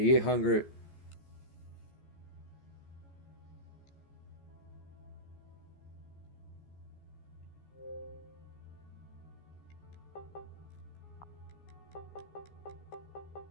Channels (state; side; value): late; right; 14 ms